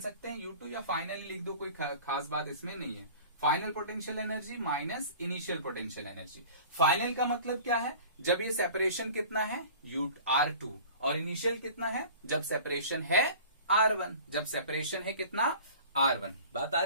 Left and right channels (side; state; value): both; inverted; correlation -0.43